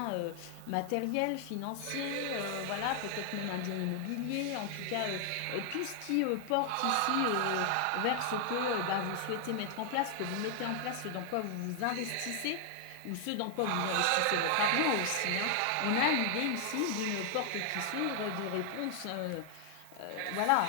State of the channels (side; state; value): both; different; correlation 0.00